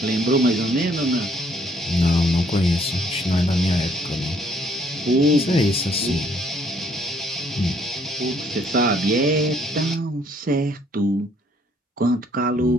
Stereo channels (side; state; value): both; normal; correlation 0.65